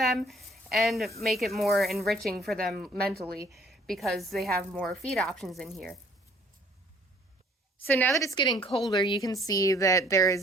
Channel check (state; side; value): normal; both; correlation 0.59